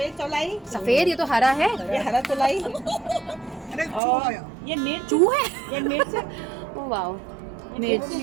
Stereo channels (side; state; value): left; drops out; at 4.0 s